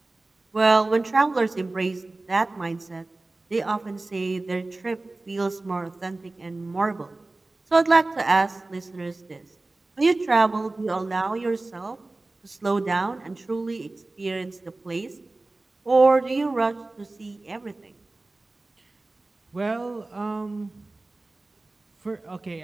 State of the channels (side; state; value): left; quieter; 3.1 dB